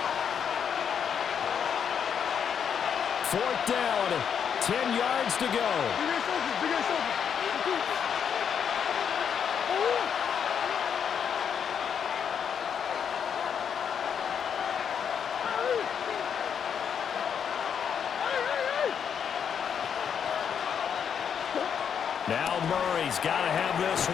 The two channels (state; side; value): quieter; right; 7.7 dB